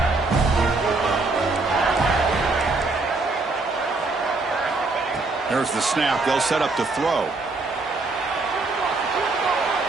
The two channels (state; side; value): quieter; left; 3.5 dB